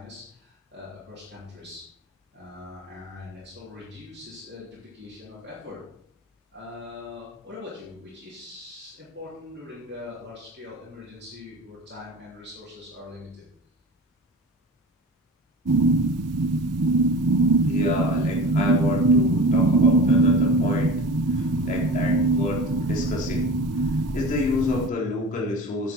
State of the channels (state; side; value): normal; both; correlation 0.35